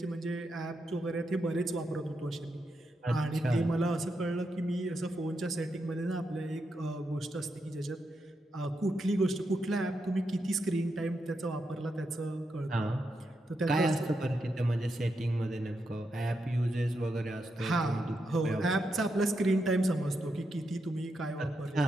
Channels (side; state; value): both; normal; correlation 0.84